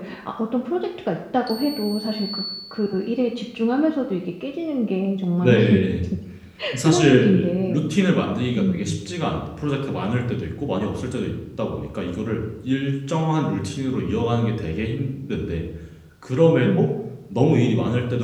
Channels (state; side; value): identical; both; correlation 1.00